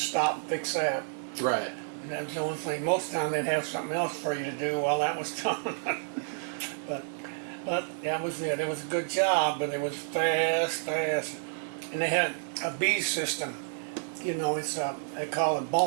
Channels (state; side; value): silent; left; digital silence